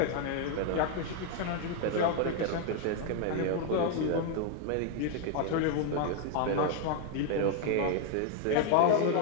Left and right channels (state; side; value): different; both; correlation 0.01